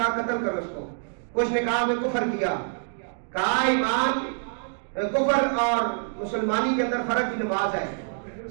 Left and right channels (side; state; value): left; silent; digital silence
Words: قتل کرو اس کو، کچھ نے کہا میں کفر کیا، کہا ایمان کفر اور مسلمانی کے اندر فرق کی نماز ہے،